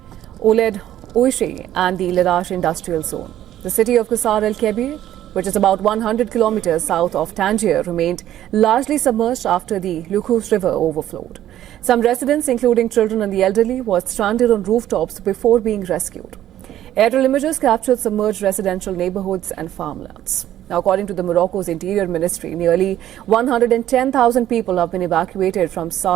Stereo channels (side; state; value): left; quieter; 12.3 dB